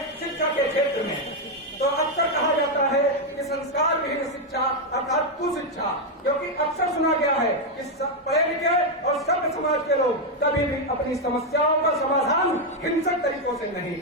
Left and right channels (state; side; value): normal; both; correlation 0.02